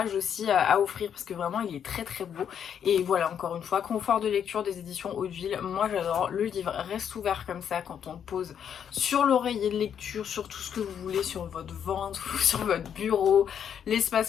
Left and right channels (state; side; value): quieter; right; 8.4 dB